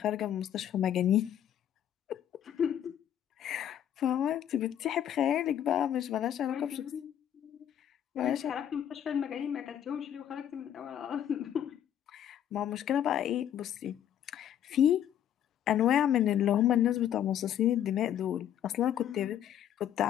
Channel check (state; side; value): quieter; right; 10.3 dB